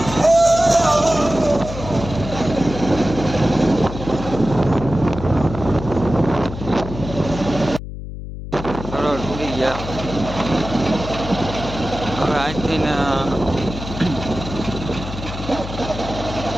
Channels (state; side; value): noise; left; hum, 9 dB below the sound